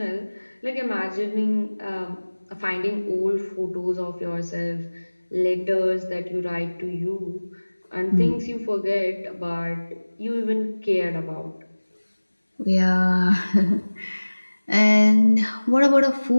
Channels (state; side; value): inverted; both; correlation -1.00